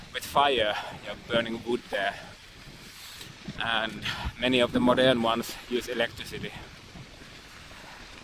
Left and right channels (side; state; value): both; identical; correlation 1.00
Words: with fire. You're burning wood there. And many of the modern ones use electricity.